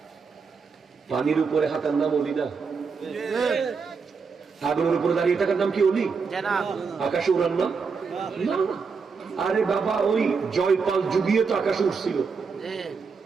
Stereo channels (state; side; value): quieter; left; 5.3 dB